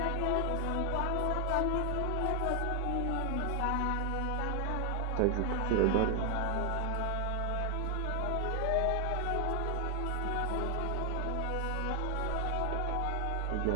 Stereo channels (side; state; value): both; different; correlation 0.00